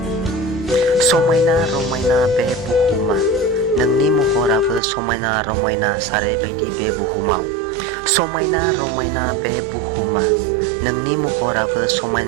समायना रमायना बे बुहुमा नोंनि महराबो समायना रमायना सारैबायदि बे बुहुमाव। समायना रमायना बे बुहुमा नोंनि महराबो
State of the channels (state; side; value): drops out; left; at 4.8 s